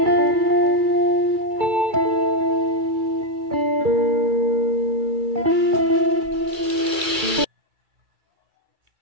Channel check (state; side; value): late; left; 2.3 ms